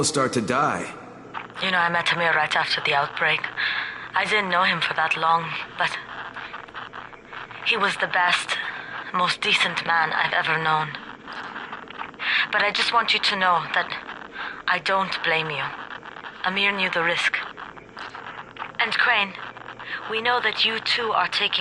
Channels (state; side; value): identical; both; correlation 1.00